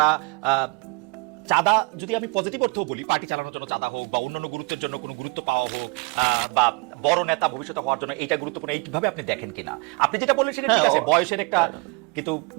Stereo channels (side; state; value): left; quieter; 29.9 dB